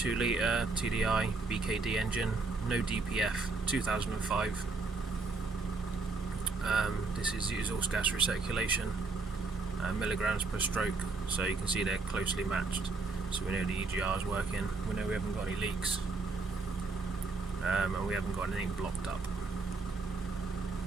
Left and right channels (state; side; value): quieter; left; 4.0 dB